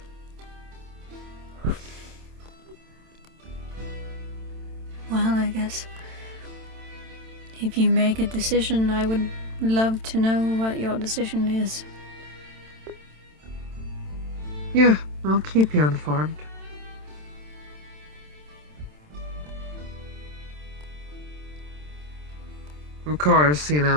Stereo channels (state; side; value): late; left; 27 ms